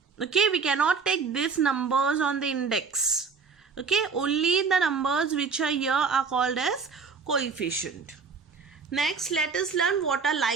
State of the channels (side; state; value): left; quieter; 5.3 dB